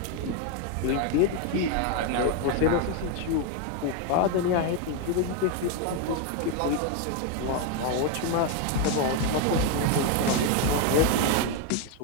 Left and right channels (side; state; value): both; different; correlation 0.01